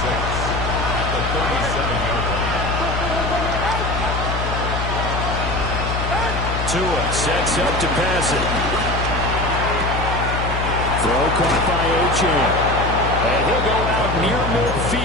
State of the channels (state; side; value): noise; left; hum, 3 dB below the sound